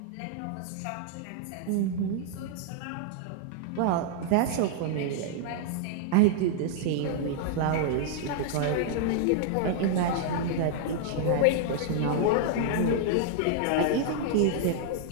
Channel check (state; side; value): different; both; correlation -0.01